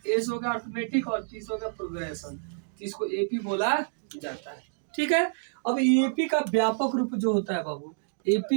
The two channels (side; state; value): left; silent; digital silence